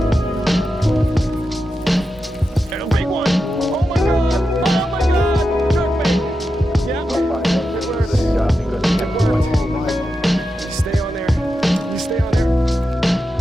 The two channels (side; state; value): both; normal; correlation 0.89